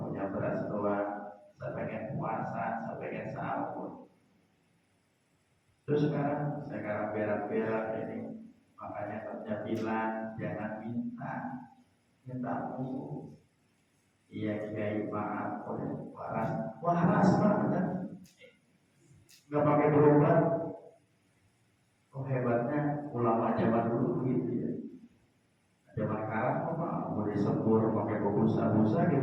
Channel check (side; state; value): both; identical; correlation 1.00